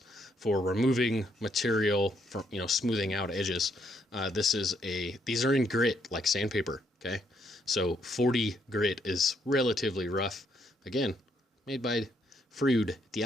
for removing material from, smoothing out edges. These are in grit, like sandpaper. Okay, so 40 grit is relatively rough. Again, made by Freud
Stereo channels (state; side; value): normal; both; correlation 0.73